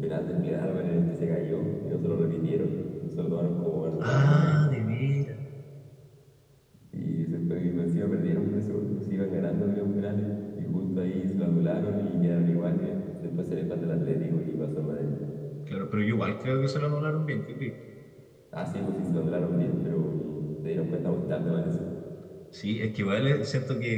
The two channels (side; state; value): both; identical; correlation 1.00